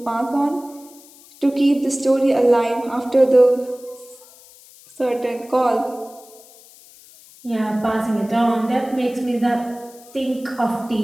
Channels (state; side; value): noise; left; hiss, 23 dB below the sound